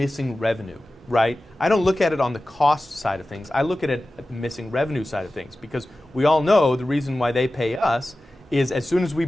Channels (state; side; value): normal; both; correlation 0.95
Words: revenue, right? I don't look at it on the cost side of things. I look at it at the missing revenue side of things, because we all know the reason why they pay us is as soon as we